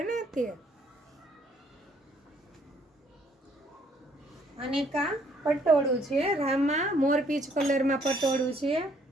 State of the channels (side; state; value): both; normal; correlation 0.65